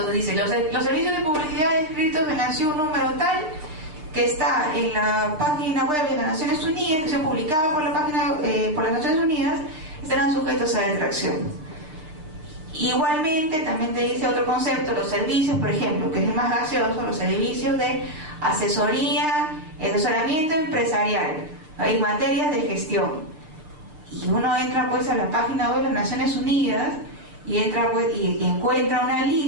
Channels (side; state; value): left; late; 6.6 ms